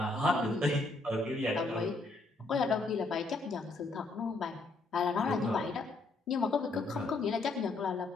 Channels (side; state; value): right; quieter; 3.2 dB